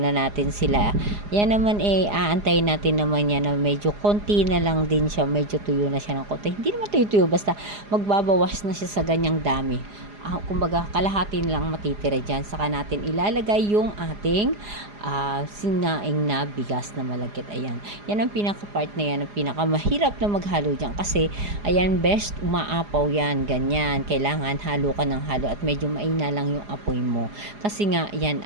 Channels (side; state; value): left; late; 4.9 ms